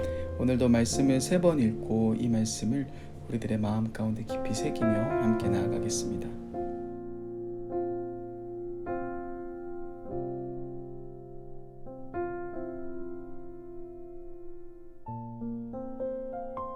오늘도 말씀을 3번 읽고 이 말씀을 우리들의 마음 가운데 깊이 새기며 함께 나아가겠습니다.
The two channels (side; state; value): both; identical; correlation 1.00